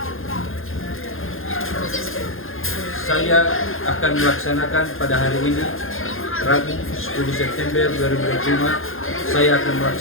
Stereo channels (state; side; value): late; right; 0.60 ms